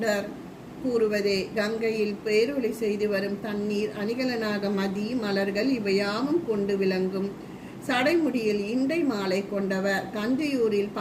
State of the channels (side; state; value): both; identical; correlation 1.00